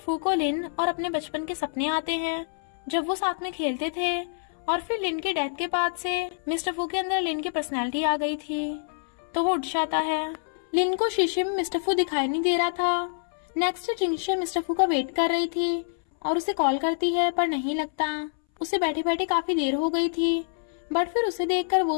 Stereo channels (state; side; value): silent; right; 60 dB below the other